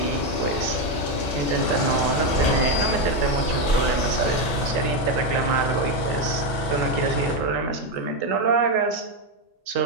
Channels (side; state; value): both; normal; correlation 0.08